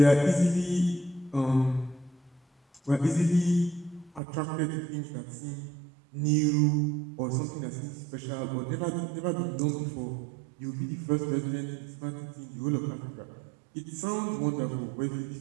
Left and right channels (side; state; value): left; drops out; at 4.2 s